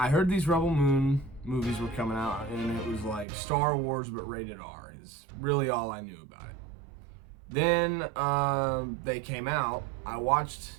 heard these Rebel Moon movies were coming out, and it was like Star Wars but rated R is really all I knew about it. Then they came out. I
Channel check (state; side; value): drops out; left; at 3.2 s